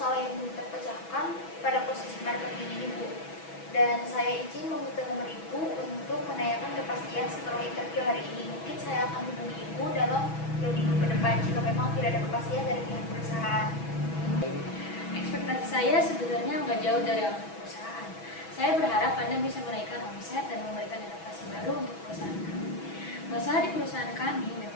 yang belum terpecahkan pada posisi marketing ini, Bu? Dan saya izin meminta nomor Ibu untuk menanyakan kepastian setelah interview hari ini. Mungkin saya akan hubungi Ibu dalam 2 minggu ke depan jika memang tidak ada kepastian dari pihak perusahaan. Ekspektasi saya sebenarnya nggak jauh dari perusahaan. Saya berharap Anda bisa menaikkan omset dan memberikan adaptasi baru untuk perusahaan kami. Masalah di perusahaan kami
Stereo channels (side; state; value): right; late; 6.1 ms